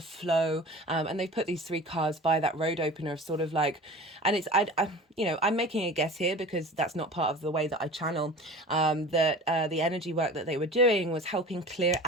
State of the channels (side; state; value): both; normal; correlation 0.39